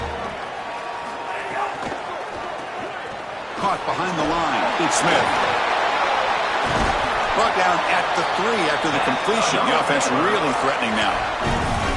Caught behind the line. It's Smith. Brought down at the 3 after the completion. The offense really threatening now.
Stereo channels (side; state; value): both; identical; correlation 1.00